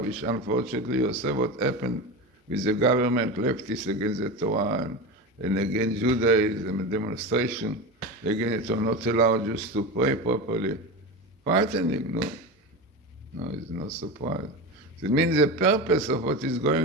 which unfortunately you saw what happened with the government, leftists against the Torah, and against Judaism, and demonstration against it, or not allow Jews to pray properly. Frightening, no, it's no surprise. It means the purpose of what is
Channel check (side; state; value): both; normal; correlation 0.23